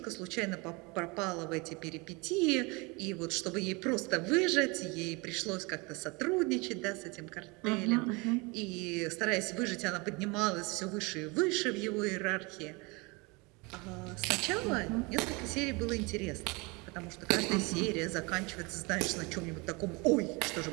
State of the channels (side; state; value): left; quieter; 27.2 dB